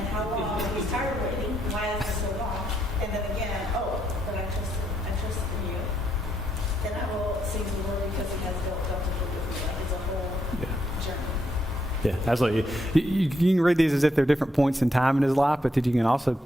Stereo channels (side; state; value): both; normal; correlation 0.77